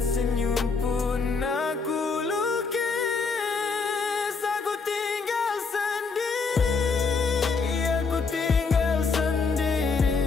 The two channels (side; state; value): right; quieter; 4.7 dB